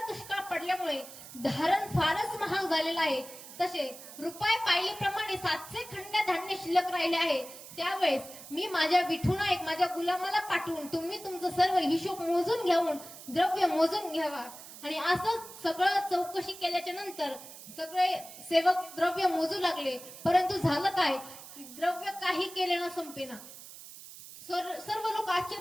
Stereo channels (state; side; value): noise; right; hiss, 15 dB below the sound